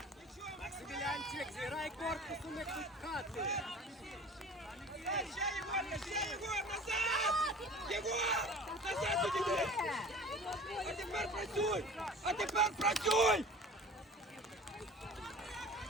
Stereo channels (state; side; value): normal; both; correlation 0.41